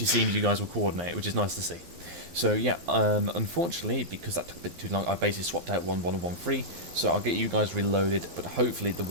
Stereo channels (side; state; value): left; late; 12 ms